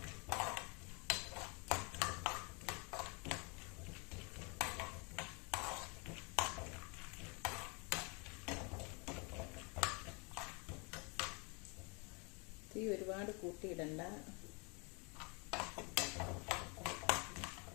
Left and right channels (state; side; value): quieter; right; 31.9 dB